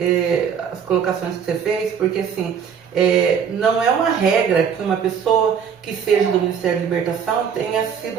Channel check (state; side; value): quieter; left; 7.4 dB